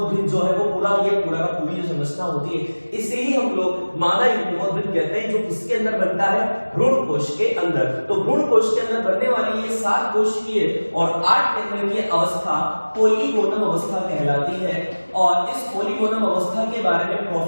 जो है वो पूरा का पूरी जो संरचना होती है इसे ही हम लोग मादा युग्मकोद्भिद कहते हैं, जो किसके अंदर बनता है भ्रूण कोश के अंदर। तो भ्रूण कोश के अंदर बनने वाली ये 7 कोशिकीय और 8 केंद्रीय अवस्था पोलीगोनम अवस्था कहलाती है और इस पोलीगोनम अवस्था के बारे में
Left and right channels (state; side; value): inverted; both; correlation -1.00